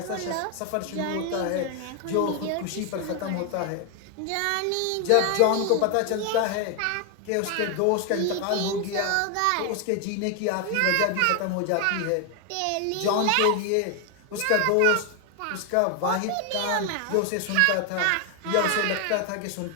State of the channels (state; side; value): different; both; correlation 0.01